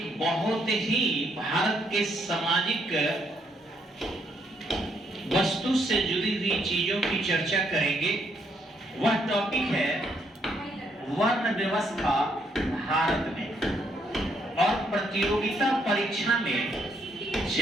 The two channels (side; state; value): both; normal; correlation 0.73